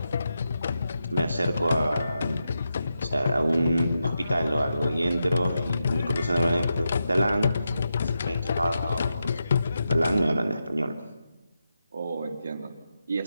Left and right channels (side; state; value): both; inverted; correlation -0.87